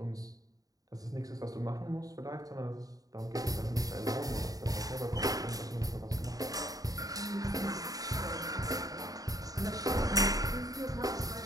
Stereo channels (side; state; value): left; late; 0.18 ms